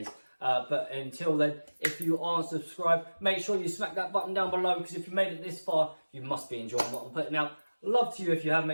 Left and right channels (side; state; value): both; inverted; correlation -1.00